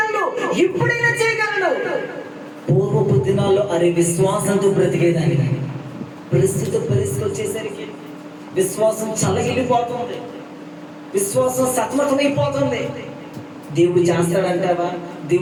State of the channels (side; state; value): both; identical; correlation 1.00